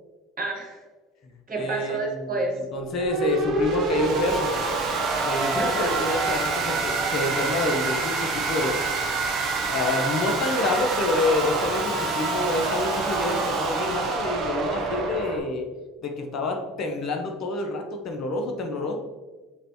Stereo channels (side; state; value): both; normal; correlation 0.37